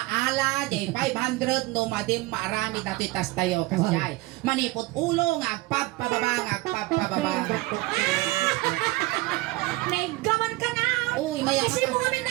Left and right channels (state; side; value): quieter; left; 20.7 dB